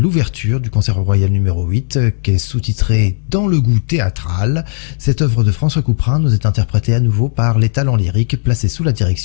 du concert royal numéro 8, qui est sous-titré Dans le goût théâtral. Cette œuvre de François Couperin nous est interprétée à nouveau par les talents lyriques placés sous la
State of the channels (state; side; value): silent; right; digital silence